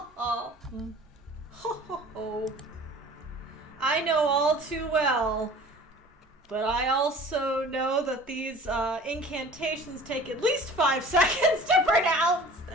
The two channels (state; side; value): normal; both; correlation 0.45